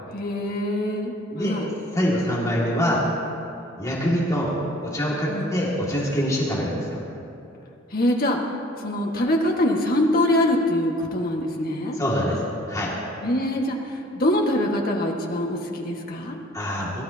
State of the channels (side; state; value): both; normal; correlation 0.55